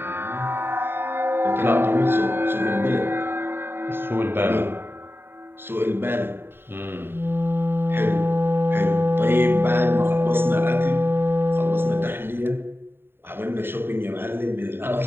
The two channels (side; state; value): left; late; 0.11 ms